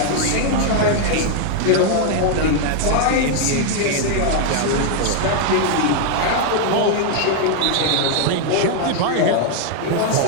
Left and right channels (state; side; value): different; both; correlation 0.00